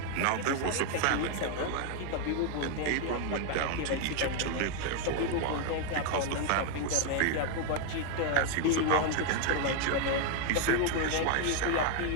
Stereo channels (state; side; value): different; both; correlation 0.01